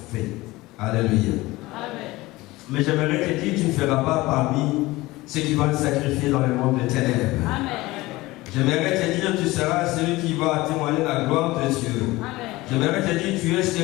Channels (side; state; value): right; quieter; 19.8 dB